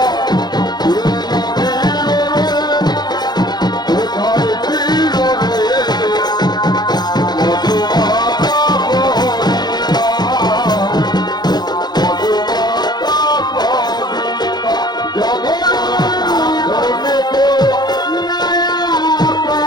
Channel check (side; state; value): right; late; 0.20 ms